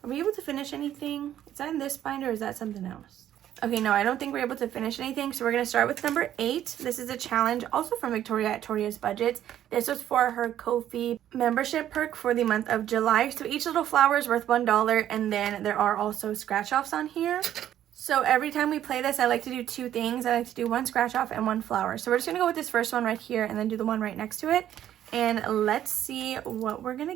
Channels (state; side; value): quieter; left; 11.4 dB